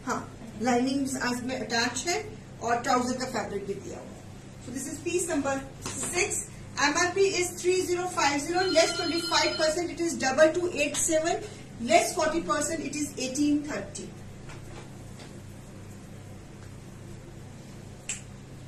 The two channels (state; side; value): identical; both; correlation 1.00